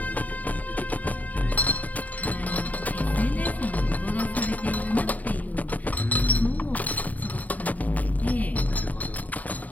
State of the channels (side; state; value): right; late; 0.075 ms